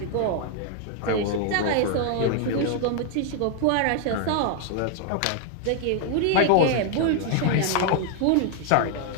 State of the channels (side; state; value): both; different; correlation 0.00